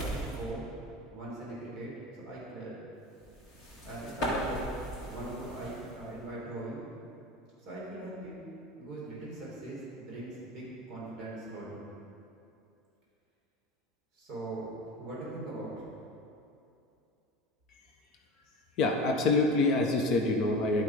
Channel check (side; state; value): both; normal; correlation 0.31